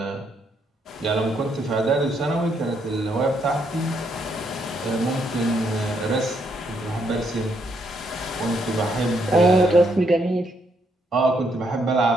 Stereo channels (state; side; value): normal; both; correlation 0.74